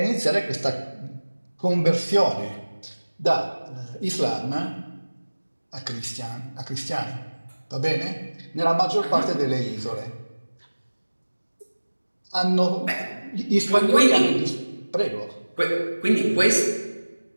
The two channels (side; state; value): both; inverted; correlation -1.00